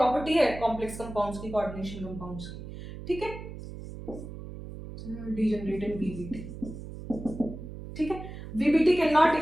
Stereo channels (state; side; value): noise; right; hum, 11 dB below the sound